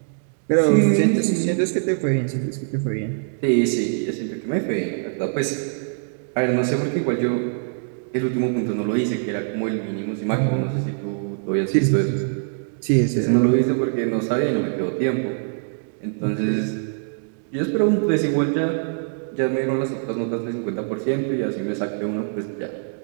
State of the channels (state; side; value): silent; left; digital silence